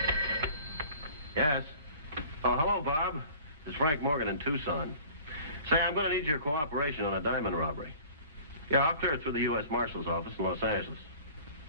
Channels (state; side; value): inverted; both; correlation -0.45